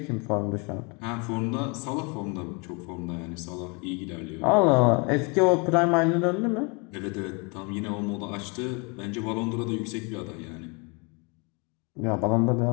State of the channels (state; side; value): quieter; right; 31.5 dB